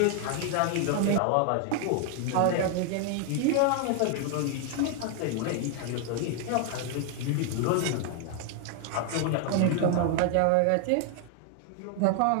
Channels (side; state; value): both; different; correlation 0.00